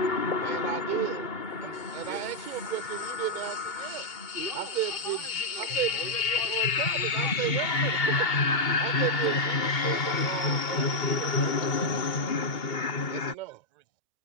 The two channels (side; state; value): right; late; 2.2 ms